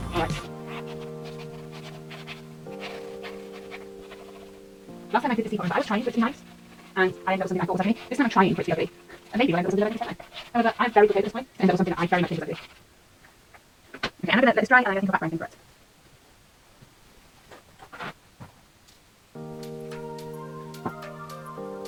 alright. Last time I did this teapot, I was trying for it to be nice, and I ended up with something I thought was ugly. This time I'm trying for it to be ugly. And maybe I ended up with something that I think is ugly. However, I'm very good at this point, and ended up with something that I very much think is ugly. Okay, I'm going to let this dry, and I'm going to think of background for it.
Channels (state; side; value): identical; both; correlation 1.00